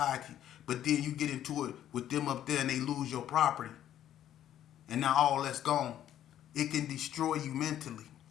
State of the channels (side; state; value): right; quieter; 11.3 dB